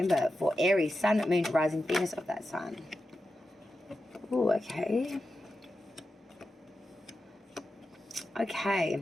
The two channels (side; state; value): both; normal; correlation 0.90